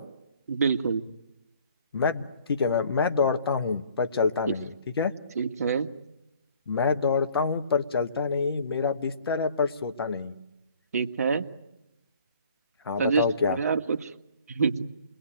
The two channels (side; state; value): both; inverted; correlation -0.54